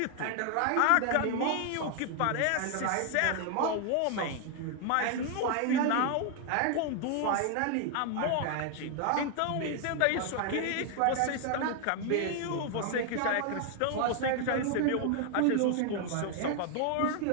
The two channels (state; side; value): different; both; correlation 0.00